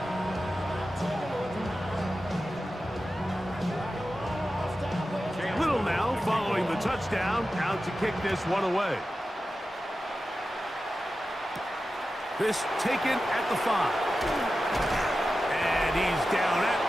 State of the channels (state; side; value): normal; both; correlation 0.93